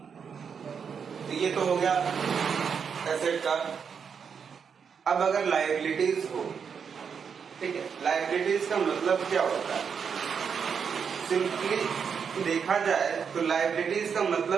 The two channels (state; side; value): quieter; left; 6.6 dB